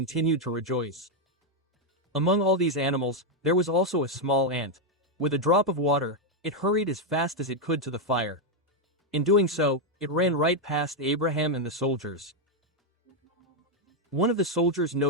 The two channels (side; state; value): both; normal; correlation 0.02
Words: to rejoice. Among all these animals, there was also a small ant. With a drop of water, it hurried as fast as it could to the fire. In doing so, it ran right past Abraham and the soldiers. One of the soldiers